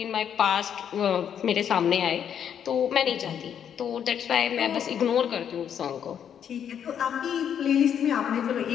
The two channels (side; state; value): right; quieter; 8.7 dB